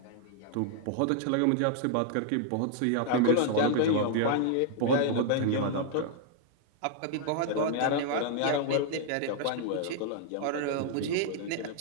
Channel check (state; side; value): different; both; correlation 0.00